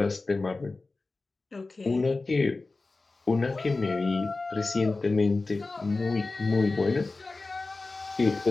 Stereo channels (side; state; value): right; quieter; 3.5 dB